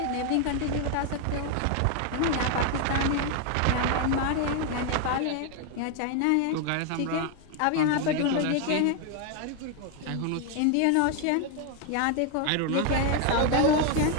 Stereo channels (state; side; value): different; both; correlation 0.01